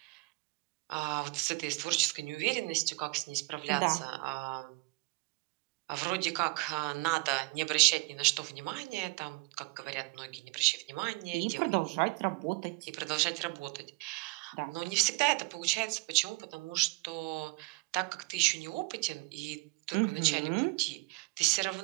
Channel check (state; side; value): quieter; left; 26.3 dB